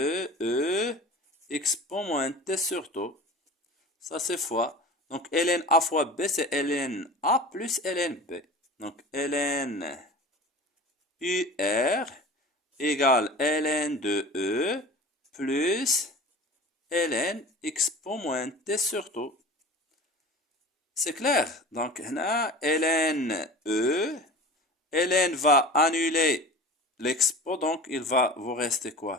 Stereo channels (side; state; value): both; normal; correlation 0.37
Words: E expo moins T sur taux. Ça, c'est fois. Donc, ln A fois B, c'est ln A plus ln B. Donc, ln UR égale ln de E plus ln expo moins T sur taux. C'est clair. Donc, là, ln E, ln va annuler l'expo, donc il va vous rester